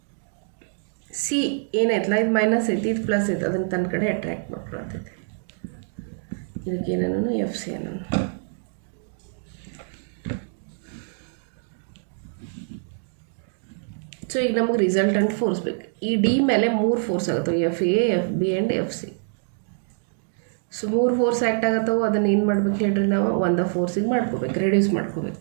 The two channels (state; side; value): silent; left; digital silence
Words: ಸಿ ಏನಾಯ್ತಲ್ಲ, ಇದು ಮೈನಸ್ ಐತಿ, ಇದು ಪ್ಲಸ್ ಐತಿ, ಅದನ್ನು ತನ್ನ ಕಡೆ ಅಟ್ರ್ಯಾಕ್ಟ್ ಮಾಡ್ಕೊಳ್ತೈತಿ. ಇದಕ್ಕೆ ಏನನ್ನು ಎಫ್ ಸಿ ಅನ್ನೋನು. ಸೊ ಈಗ ನಮಗೆ ರಿಸಲ್ಟೆಂಟ್ ಫೋರ್ಸ್ ಬೇಕು. ಈ ಡಿ ಮೇಲೆ 3 ಫೋರ್ಸ್ ಆಗುತ್ತವೆ, F A, F B and F C. So 3 force act ಆಗತ್ತವೆ. ಅದನ್ನು ಏನು ಮಾಡ್ಬೇಕು ಹೇಳ್ರಿ, ನಾವು ಒಂದು ಫೋರ್ಸಿಗೆ ಮಾಡ್ಕೋಬೇಕು, ರೆಡ್ಯೂಸ್ ಮಾಡ್ಕೋಬೇಕು.